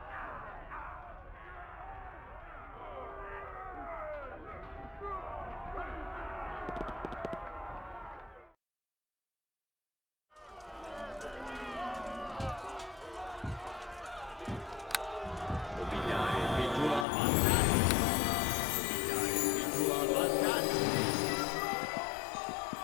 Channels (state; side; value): drops out; right; at 17.1 s